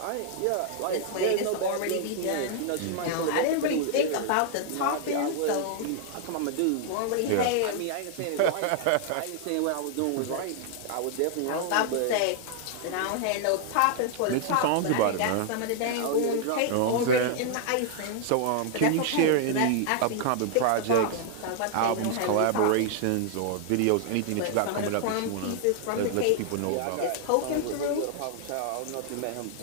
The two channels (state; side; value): different; both; correlation 0.00